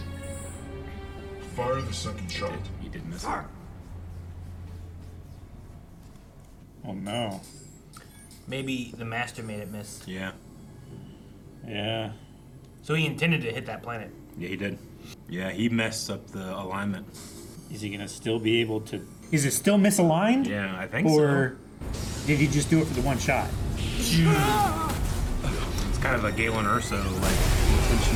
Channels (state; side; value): identical; both; correlation 1.00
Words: Fire the second shot. He did miss it. Oh no. Maybe the master made it miss. Yeah. Yeah. So he intended to hit that planet. Yeah, he did. Yeah, he messed up the alignment. Is he gonna still be able to? Is it still misaligned? Yeah, I think Or did he just do it for the one shot? so. It's kind of a Galen Urso, like,